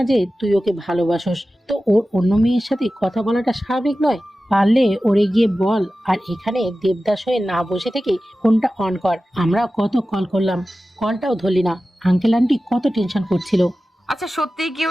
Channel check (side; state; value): both; normal; correlation 0.95